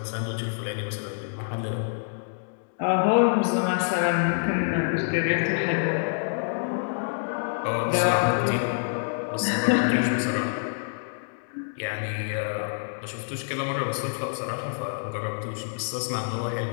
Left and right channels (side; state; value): right; silent; digital silence